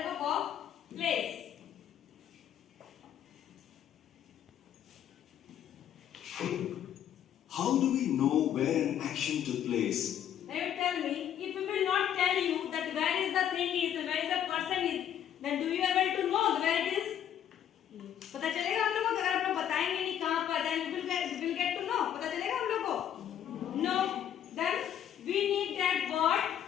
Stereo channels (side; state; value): right; quieter; 10.0 dB